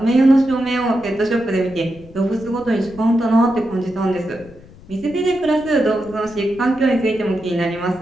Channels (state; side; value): noise; left; rumble, 21 dB below the sound